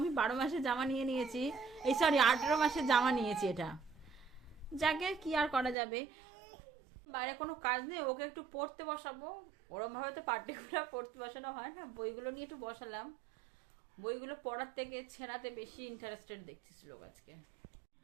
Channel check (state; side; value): drops out; left; at 5.8 s